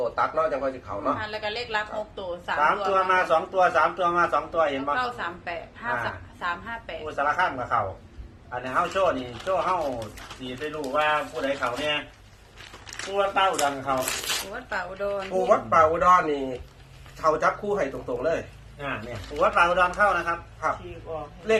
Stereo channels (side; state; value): both; identical; correlation 1.00